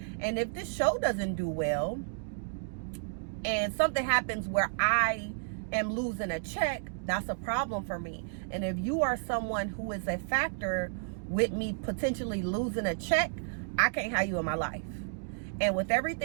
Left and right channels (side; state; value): left; silent; digital silence